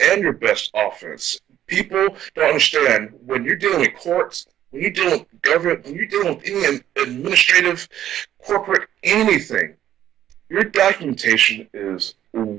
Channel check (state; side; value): quieter; left; 11.4 dB